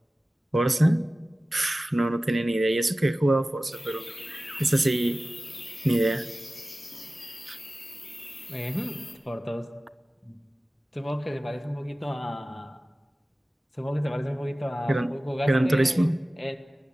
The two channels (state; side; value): normal; both; correlation 0.96